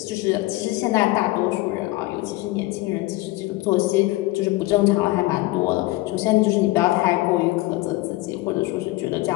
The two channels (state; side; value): quieter; right; 19.1 dB